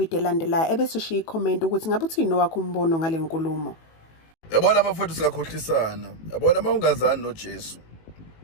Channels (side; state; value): right; late; 19 ms